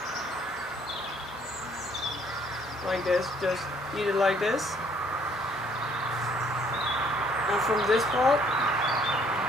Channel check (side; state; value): both; normal; correlation 0.63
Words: like this, just eat it like this. And from this part,